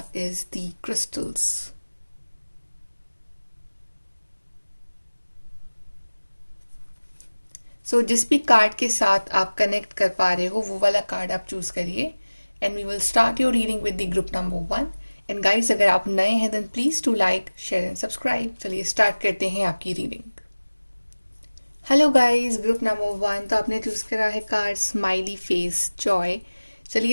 is the crystals. So जिस भी कार्ड के साथ आप कनेक्ट कर पा रहे हो वो वाला कार्ड आप चूज करिए and we will start your reading with the group number 1। And guys, अगर आप नए हैं then please to like share and subscribe. चलिए स्टार्ट करते हैं आपकी reading. Hello guys, group number 1, तो आपने चूज करा है कार्ड स्माइली फेस जॉय।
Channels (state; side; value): inverted; both; correlation -1.00